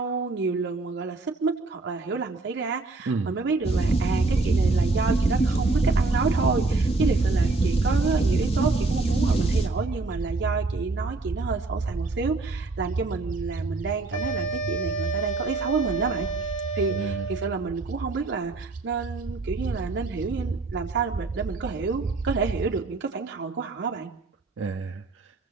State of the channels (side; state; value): left; quieter; 3.4 dB